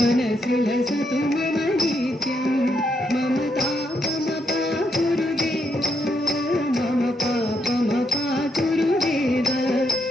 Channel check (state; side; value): normal; both; correlation 0.78